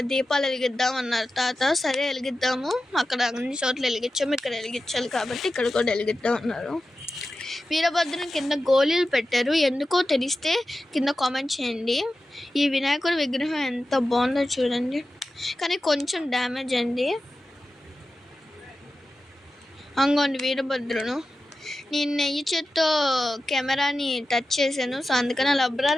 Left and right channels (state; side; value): normal; both; correlation 0.93